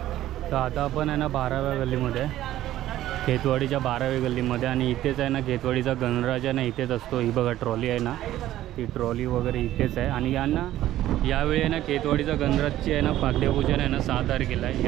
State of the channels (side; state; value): left; quieter; 13.8 dB